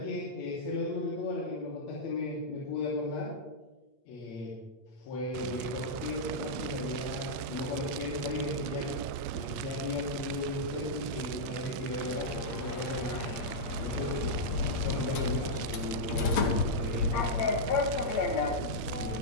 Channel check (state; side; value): late; right; 8.6 ms